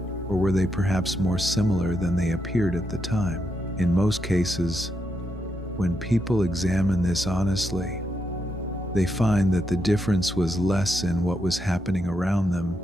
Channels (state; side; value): normal; both; correlation 0.82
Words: or were they perhaps more similar than they appeared at the time? In most cases, when people examine this honestly, they find that the difference was less in what was happening around them